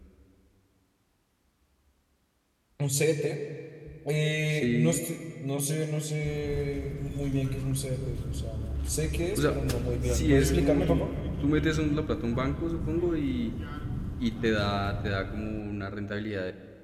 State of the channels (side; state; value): both; identical; correlation 1.00